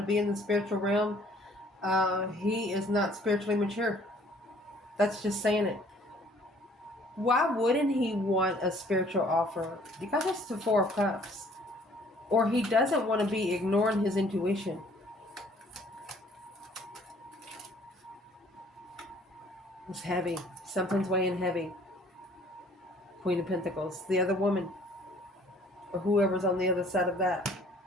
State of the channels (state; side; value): normal; both; correlation 0.57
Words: be in the spiritual realm, he is not spiritually mature. That's just saying it. Why wouldn't he want a spiritual offer? You got this to 4 of Cups. Or he doesn't want to be ignoring his intuition. It's heavy. Something's weighing heavy. Queen of Pentacles. The other woman. Or whoever's on the other side of that.